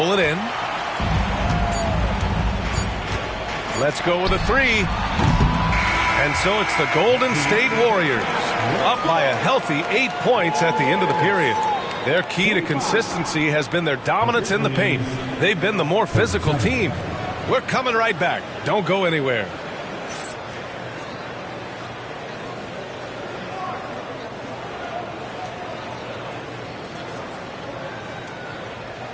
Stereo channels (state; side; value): identical; both; correlation 1.00